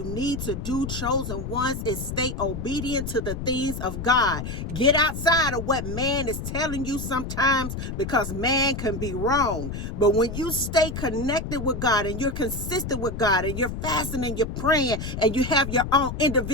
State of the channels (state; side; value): noise; left; rumble, 6 dB below the sound